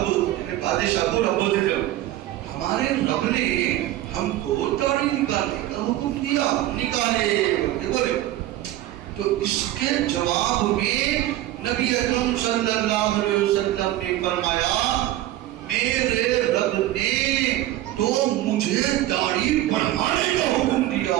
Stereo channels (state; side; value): quieter; left; 14.6 dB